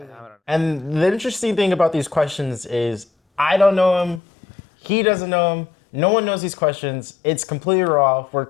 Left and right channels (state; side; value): drops out; right; at 4.2 s